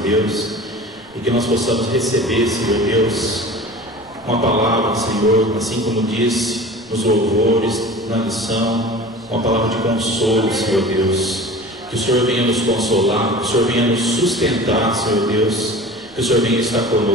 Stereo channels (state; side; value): noise; right; rumble, 29 dB below the sound